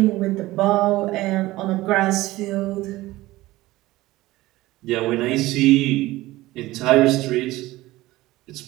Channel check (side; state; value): left; quieter; 18.0 dB